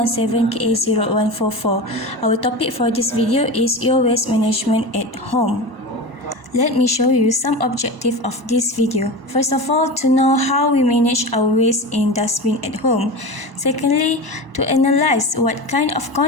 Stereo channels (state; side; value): late; left; 1.0 ms